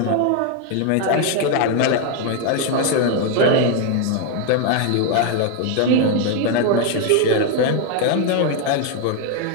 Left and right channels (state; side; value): different; both; correlation 0.01